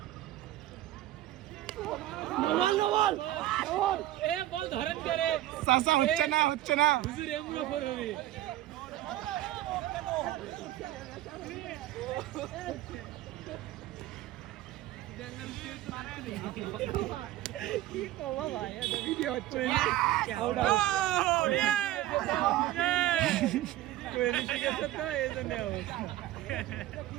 নওয়াল এ বল ধরেন করে চাচা হচ্ছে না হুজুর এমরা ফর হবে কি কবা ভাই এটা ভিডিও হচ্ছে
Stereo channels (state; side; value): quieter; left; 14.7 dB